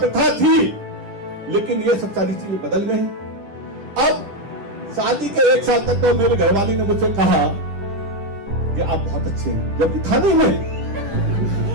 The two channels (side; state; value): left; late; 10 ms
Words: थी, लेकिन ये सब सारी चीजें बदल गई। अब शादी के 1 साल तक तो मेरे घरवाली ने मुझसे कहा कि आप बहुत अच्छे हैं, जब था नहीं मैं।